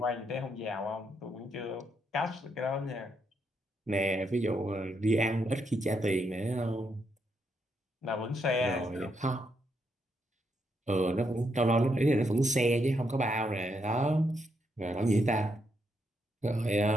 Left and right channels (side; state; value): both; normal; correlation 0.79